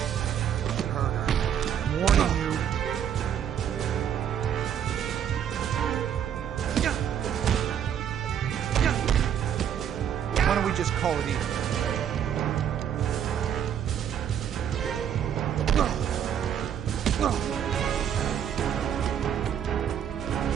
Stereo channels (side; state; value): left; quieter; 9.2 dB